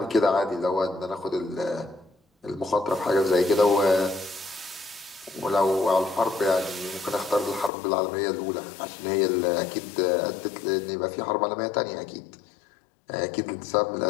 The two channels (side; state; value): right; drops out; at 7.7 s